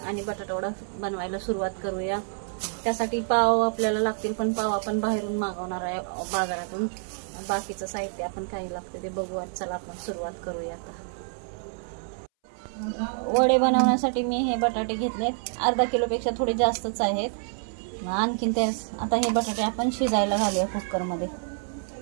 आणि बटाटा वडा बनवायला सुरुवात करूया। त्यासाठी पाव आपल्याला लागतील, पण पाव आपण बाहेरून मागवणार आहे बाजारातून। बाकीचं साहित्य आपण काय लागते ते बघूया। चला आपण सुरुवात करूया। आता वडे बनवण्यासाठी मी हे बटाटे घेतलेत, अर्धा किलोपेक्षा थोडे जास्तच आहेत। आणखीन ते आता हे बटाटे आपण शिजायला घालूया कुकर मध्ये।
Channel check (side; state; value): left; silent; 60 dB below the other